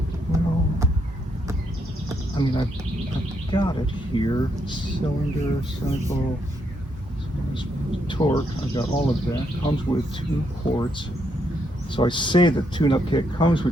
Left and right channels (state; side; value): normal; both; correlation 0.76